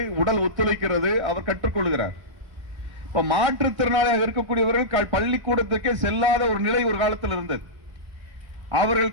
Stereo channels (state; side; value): late; left; 1.5 ms